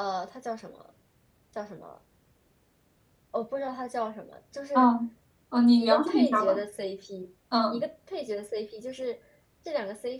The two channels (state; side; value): identical; both; correlation 1.00